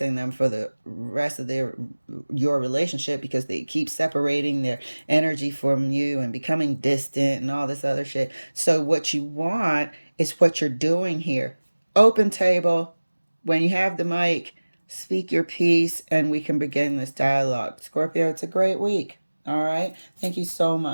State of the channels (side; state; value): both; inverted; correlation -1.00